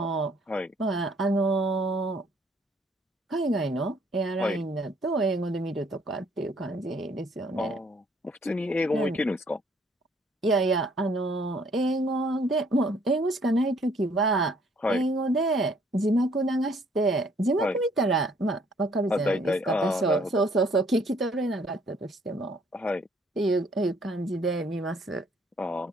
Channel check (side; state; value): both; normal; correlation 0.63